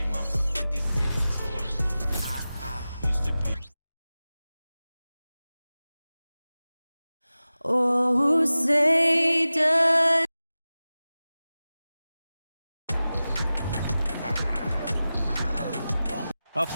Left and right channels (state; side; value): inverted; both; correlation -0.96